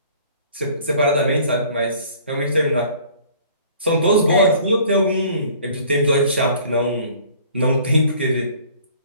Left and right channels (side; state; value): both; inverted; correlation -0.53